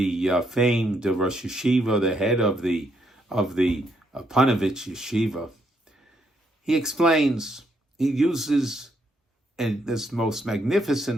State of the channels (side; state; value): both; normal; correlation 0.75